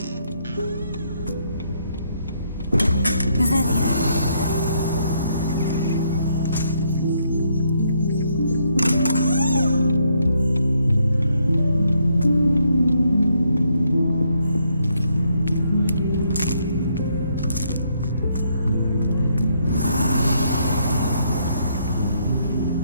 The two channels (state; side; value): inverted; both; correlation -0.73